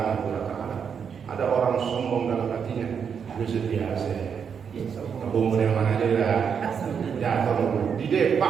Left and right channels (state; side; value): quieter; left; 6.9 dB